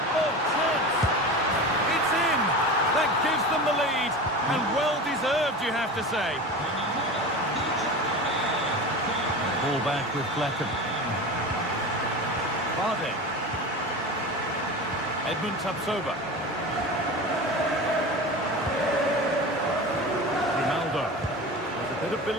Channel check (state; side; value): normal; both; correlation 0.30